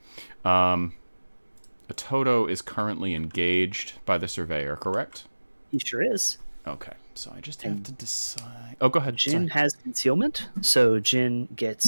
A Toto is currently engaged by the surveyor, correct? He sure is. Okay. So I just have to decide. Oh, go ahead. Jin has concealment, so Jin gets.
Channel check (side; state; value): both; inverted; correlation -1.00